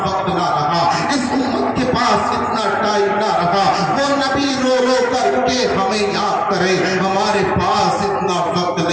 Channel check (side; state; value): both; identical; correlation 1.00